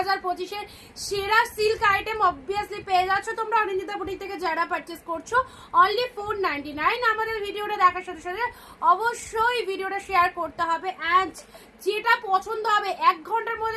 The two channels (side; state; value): both; identical; correlation 1.00